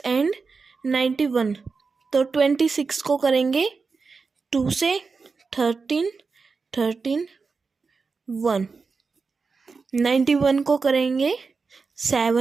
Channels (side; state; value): left; quieter; 4.7 dB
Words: एंड 91। तो 26 को करेंगे 2 से 13 1। 91 को करेंगे